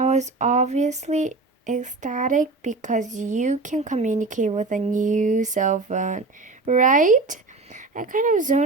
was obviously ecstatic because you can communicate with a new cell phone, right? I kind of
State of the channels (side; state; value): left; quieter; 3.5 dB